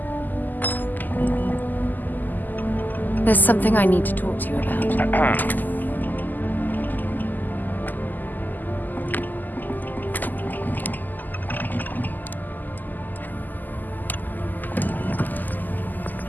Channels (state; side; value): late; right; 0.085 ms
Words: There's something I need to talk to you about.